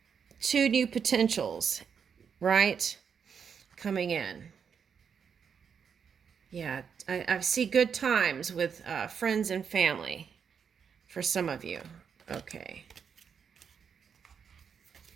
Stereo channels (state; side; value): quieter; left; 6.9 dB